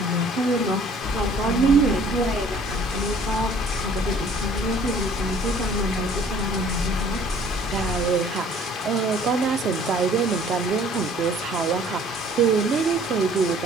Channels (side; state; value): both; normal; correlation 0.55